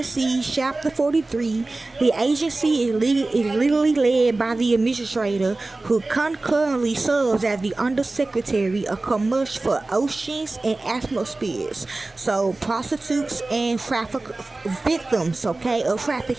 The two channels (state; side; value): quieter; left; 3.1 dB